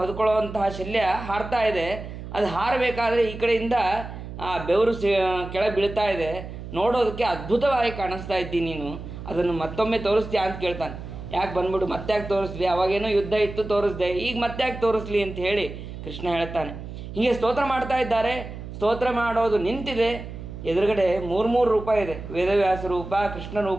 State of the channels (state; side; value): noise; right; hum, 10 dB below the sound